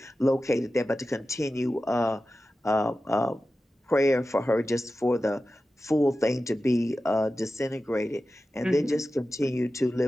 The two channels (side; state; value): both; normal; correlation 0.94